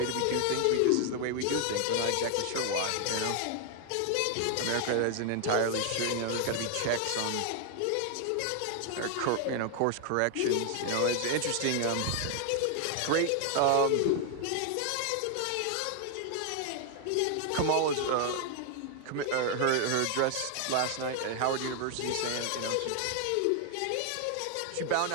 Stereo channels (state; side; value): different; both; correlation 0.00